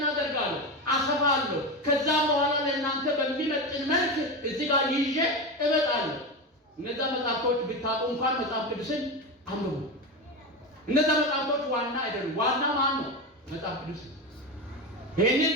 አደርጋለሁ? አሰፋለሁ። ከዛም በኋላ ለእናንተ በሚመጥን መልክ እዚህ ጋር ይዤ እመጣለሁ። እነዛ መጽሐፍቶች ብታውቁ እንኳን መጽሐፍ ቅዱስን አንብቡ። እነዛ መጽሐፍቶች ዋና አይደሉም። ዋና ማን ነው? መጽሐፍ ቅዱስ። ይህንን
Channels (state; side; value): normal; both; correlation 0.19